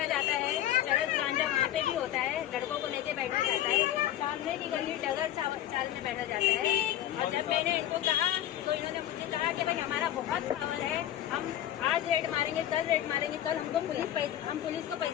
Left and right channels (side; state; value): right; quieter; 12.4 dB